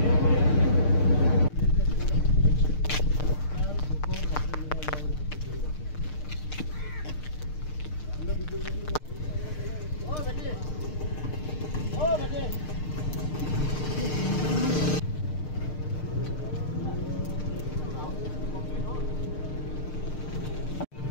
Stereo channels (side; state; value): right; late; 6.6 ms